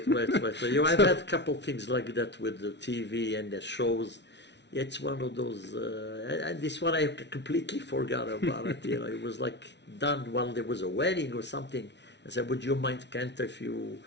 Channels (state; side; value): late; right; 0.51 ms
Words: I've had a couple things like that with the TV and the shows. It's one of those, and this one I completely forgot about it. You know, it was like done while there was a wedding or something. I said, would you mind, Cantor, if you